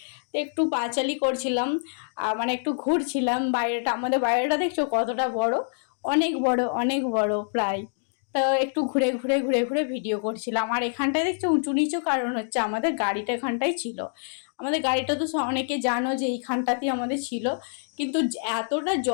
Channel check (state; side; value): silent; right; digital silence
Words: তো একটু পাঁচালি করছিলাম, মানে একটু ঘুরছিলাম বাইরেটা, আমাদের বাইরেটা দেখছো কতটা বড়, অনেক বড় অনেক বড় প্রায়। তো একটু ঘুরে ঘুরে ঘুরে ঘুরে ভিডিও করছিলাম। আর এখানটায় দেখছো উঁচু নিচু, কারণ হচ্ছে আমাদের গাড়িটা এখানটাই ছিল। আমাদের গাড়িটা তো অনেকে জানো যে এইখানটাতেই আমাদের ছিল, কিন্তু এতটা